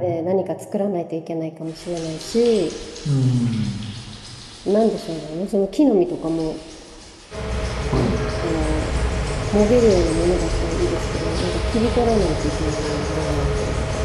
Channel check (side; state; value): both; identical; correlation 1.00